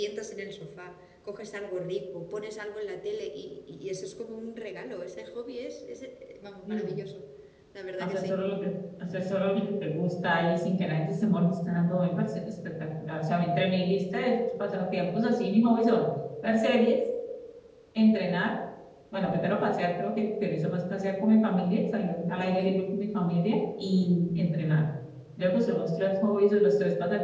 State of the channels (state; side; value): identical; both; correlation 1.00